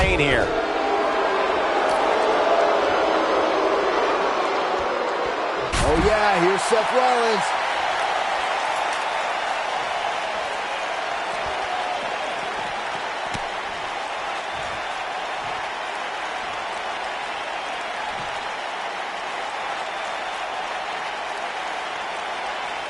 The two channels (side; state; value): both; identical; correlation 1.00